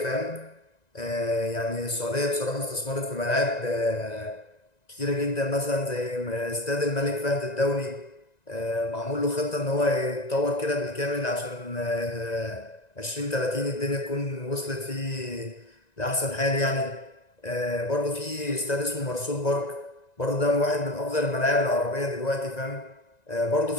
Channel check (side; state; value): right; late; 1.9 ms